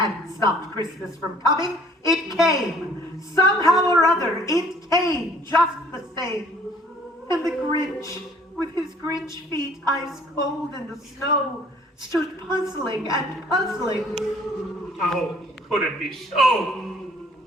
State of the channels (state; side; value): normal; both; correlation 0.57